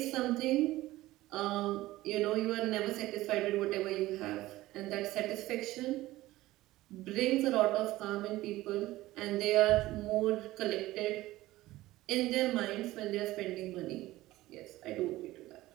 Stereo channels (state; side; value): quieter; left; 17.1 dB